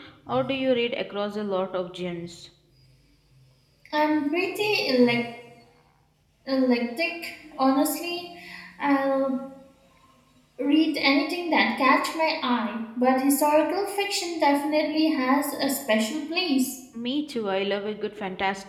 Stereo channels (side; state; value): both; identical; correlation 1.00